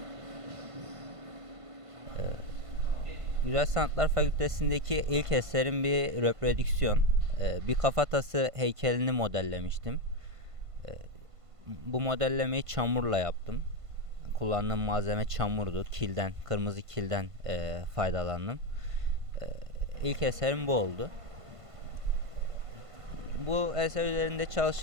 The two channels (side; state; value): left; late; 1.5 ms